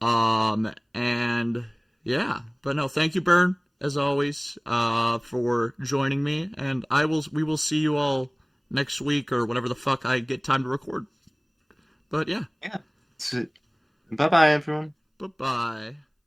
And yeah, but no, thank you, Bern, as always, for joining me, and we will see you all next week or whenever the fuck I get time to record. But yeah. Yeah. Bye bye, everyone. Bye-bye.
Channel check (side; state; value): both; identical; correlation 1.00